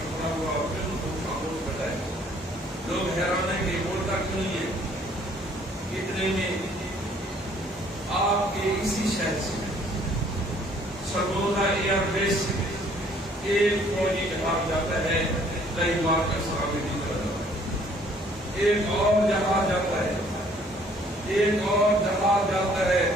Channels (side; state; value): both; normal; correlation 0.60